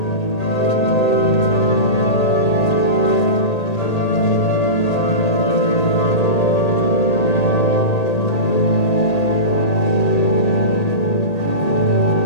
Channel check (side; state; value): right; late; 1.8 ms